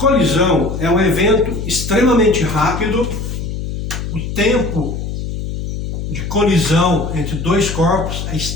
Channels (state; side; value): noise; left; hum, 5 dB below the sound